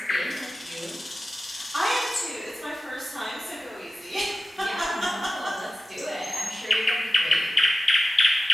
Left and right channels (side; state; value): both; normal; correlation 0.94